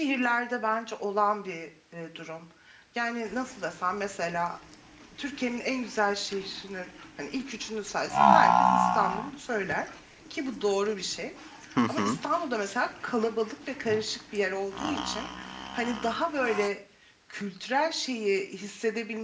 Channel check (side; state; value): both; identical; correlation 1.00